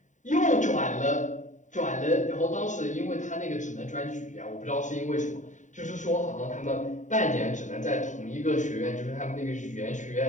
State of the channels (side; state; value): right; late; 0.36 ms